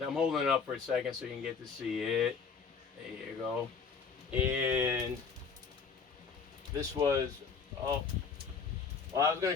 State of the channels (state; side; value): quieter; right; 5.6 dB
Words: I'm holding it up for a second so you can get to see it. There you go. And this was, oh, well, I was going